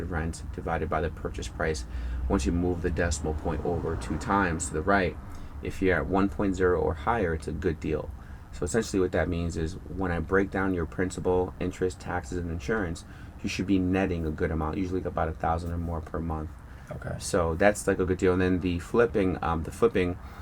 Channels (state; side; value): identical; both; correlation 1.00